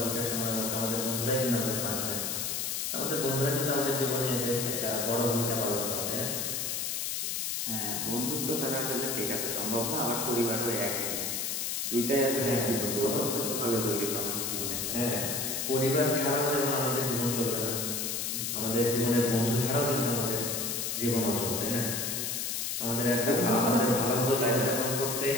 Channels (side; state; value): left; noise; hiss, 1 dB below the sound